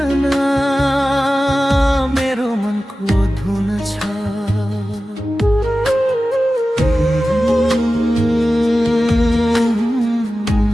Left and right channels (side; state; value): both; normal; correlation 0.95